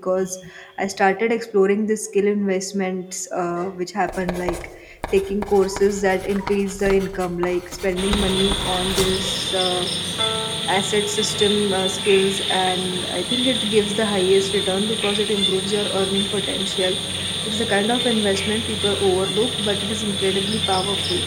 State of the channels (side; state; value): both; identical; correlation 1.00